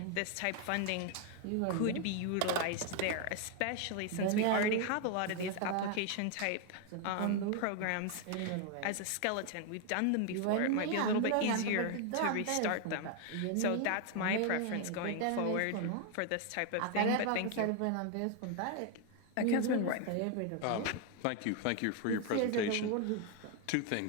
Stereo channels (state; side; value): different; both; correlation 0.00